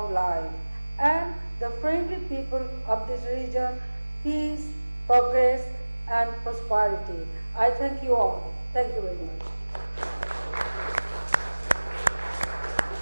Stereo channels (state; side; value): inverted; both; correlation -1.00